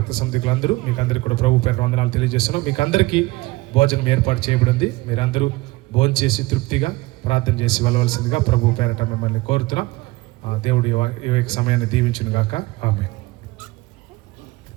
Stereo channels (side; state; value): left; quieter; 21.2 dB